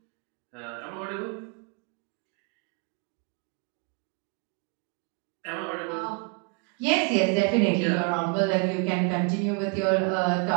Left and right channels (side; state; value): left; quieter; 33.1 dB